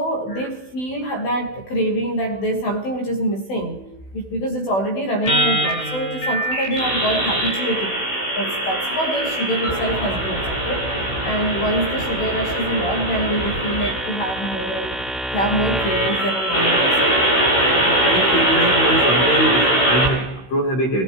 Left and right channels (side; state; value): right; late; 16 ms